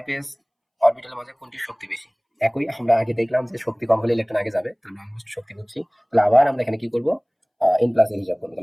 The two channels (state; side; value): identical; both; correlation 1.00